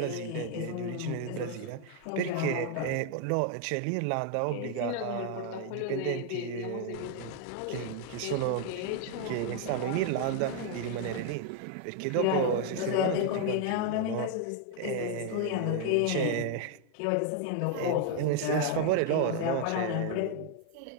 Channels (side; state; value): both; different; correlation 0.00